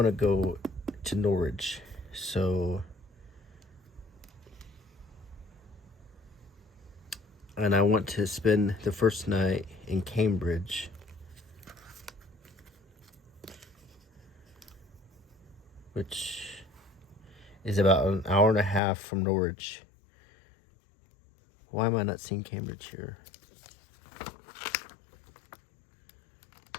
to go to Norwich. So, and I want to spend the first night in Cambridge. Which is about an hour and a half from Norwich. Why am I not seeing Cambridge here?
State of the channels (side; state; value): right; drops out; at 18.8 s